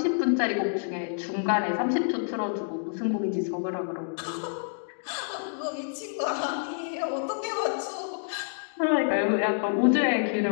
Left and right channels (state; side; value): silent; right; digital silence